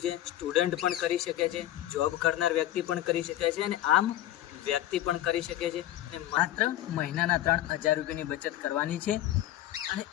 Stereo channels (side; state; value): right; quieter; 13.4 dB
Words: છે। સ્ટુડન્ટ પણ કરી શકે છે, જોબ કરનાર વ્યક્તિ પણ કરી શકે છે અને આમ વ્યક્તિ પણ કરી શકે છે। અને માત્ર મહિનાના 3000 રૂપિયાની બચત કરવાની છે અને